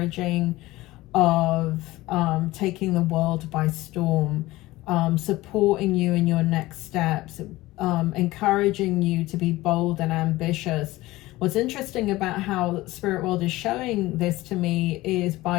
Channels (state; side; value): quieter; right; 18.4 dB